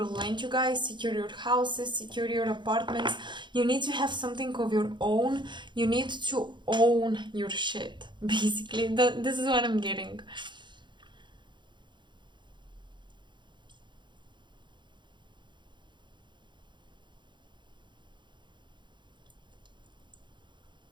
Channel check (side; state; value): left; late; 0.23 ms